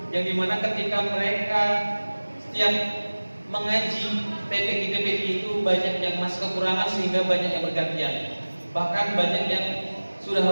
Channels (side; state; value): both; inverted; correlation -1.00